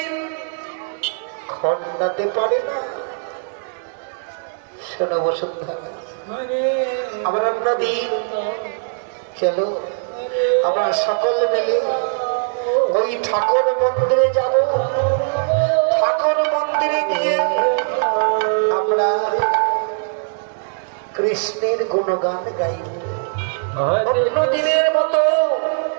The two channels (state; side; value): silent; left; digital silence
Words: খণ্ডাতে পারে না। শোনো বসুন্ধরা, আবার অন্যদিন চলো আমরা সকল মিলে ওই ঠাকুর মন্দিরে যাব। ঠাকুর মন্দিরে গিয়ে আমরা কৃষ্ণের গুণগান গাইব। অন্য দিনের মতো